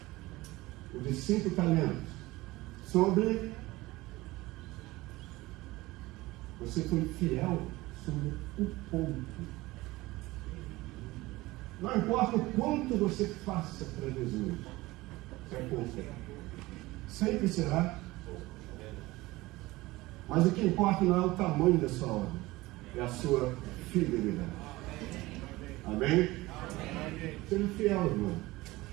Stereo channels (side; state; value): left; quieter; 19.7 dB